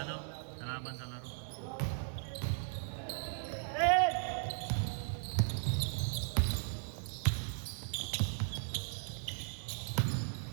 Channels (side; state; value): left; silent; digital silence